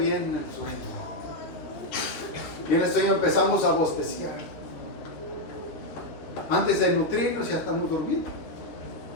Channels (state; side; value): late; right; 13 ms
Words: el sueño. Viene el sueño, empezamos a bosteciar. Antes de nutrirnos ya estamos durmiendo.